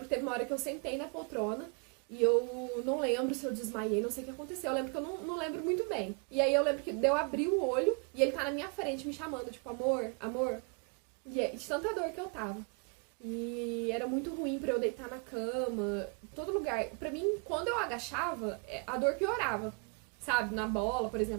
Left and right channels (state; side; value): quieter; left; 35.9 dB